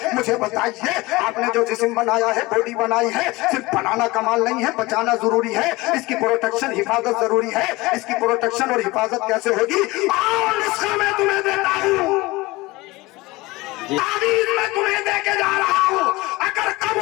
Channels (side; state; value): right; quieter; 21.3 dB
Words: मुझे बताइए, आपने जो जिस्म बनाया है, बॉडी बनाई है, सिर्फ बनाना कमाल नहीं है, बचाना जरूरी है, इसकी प्रोटेक्शन हिफाजत जरूरी है। इसकी प्रोटेक्शन और हिफाजत कैसे होगी? और इसका मैं तुम्हें देता हूँ, तावीज़ मैं तुम्हें देके जा रहा हूँ। अगर